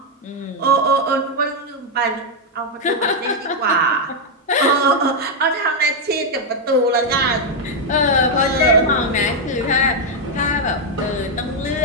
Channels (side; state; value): both; normal; correlation 0.00